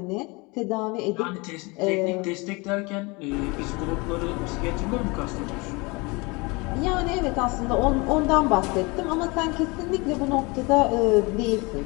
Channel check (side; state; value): right; quieter; 26.5 dB